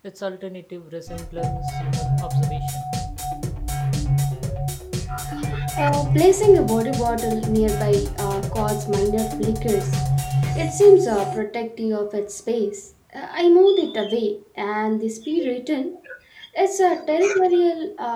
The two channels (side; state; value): both; identical; correlation 1.00